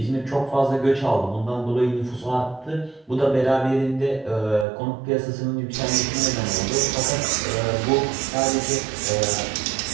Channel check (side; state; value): left; drops out; at 4.7 s